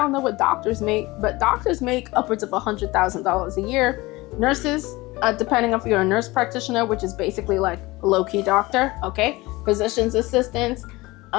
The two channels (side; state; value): right; quieter; 21.2 dB